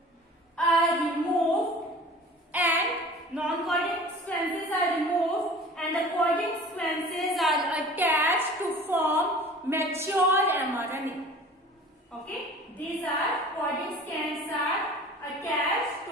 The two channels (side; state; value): both; normal; correlation 0.43